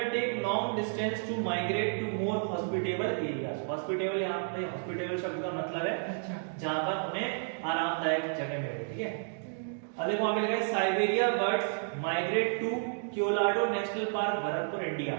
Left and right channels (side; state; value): left; silent; digital silence